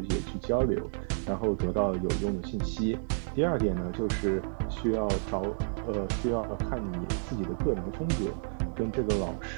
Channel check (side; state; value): left; silent; digital silence